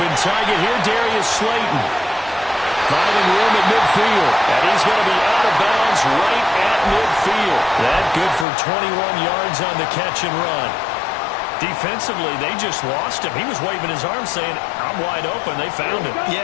target here, Darius Slayton. Finding room at midfield. And he's going to be out of bounds right at midfield. That good for 21 yards on the catch and run. Defensively, they just lost him. He was waving his arms saying, I'm wide open. They found him.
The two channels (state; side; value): drops out; right; at 8.5 s